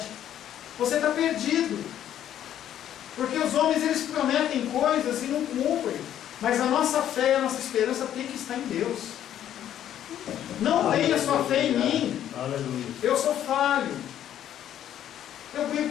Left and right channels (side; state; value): right; quieter; 10.9 dB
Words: você está perdido. Porque os homens, eles prometem coisas e não cumprem. Mas a nossa fé e a nossa esperança tem que estar em Deus. Não tenha sua fé em mim. Aleluia. Eu sou falho. Eu